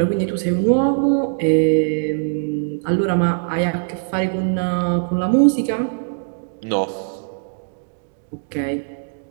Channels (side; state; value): left; silent; digital silence